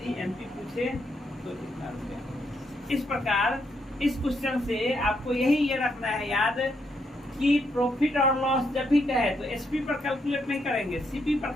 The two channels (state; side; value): normal; both; correlation 0.77